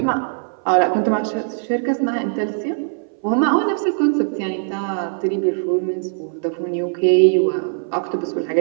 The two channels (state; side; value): silent; left; 60 dB below the other